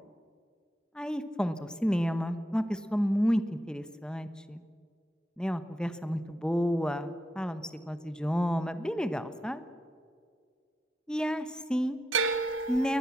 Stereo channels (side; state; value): both; normal; correlation 0.85